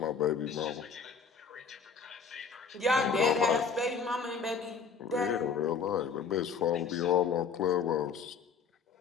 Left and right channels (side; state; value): right; quieter; 5.7 dB